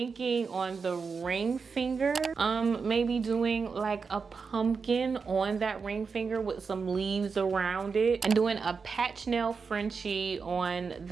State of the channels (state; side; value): quieter; left; 5.2 dB